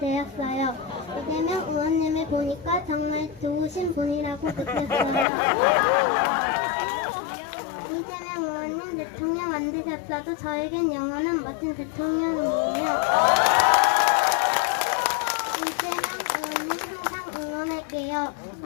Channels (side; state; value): right; drops out; at 5.2 s